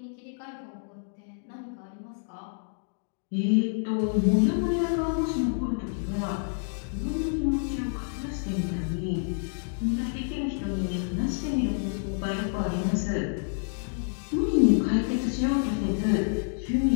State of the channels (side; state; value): right; silent; digital silence